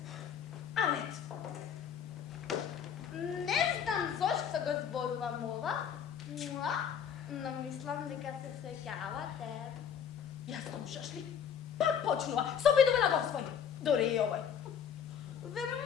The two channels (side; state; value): right; quieter; 8.0 dB